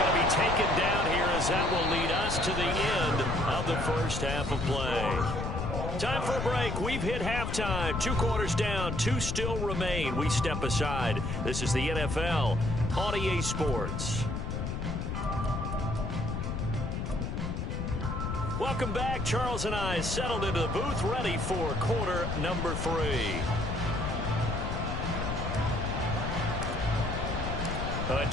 to be taken down here as that will lead us to the end of the first half of play. Time for a break. We've hit halftime. 2 quarters down, 2 still remain. We step aside. This is the NFL on EA Sports. Welcome back. Charles and I settled into the booth, ready for quarter number 3. A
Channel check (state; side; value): noise; left; rumble, 3 dB below the sound